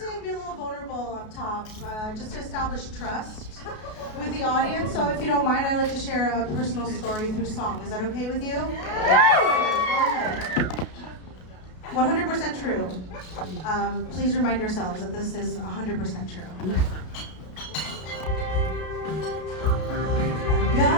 be a little vulnerable up top, just to establish trust with the audience. So if you don't mind, I'd like to share a personal story through song. Is that okay with you? Yes! 100% true. Please remind yourselves that this is 100% true. I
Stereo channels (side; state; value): right; late; 33 ms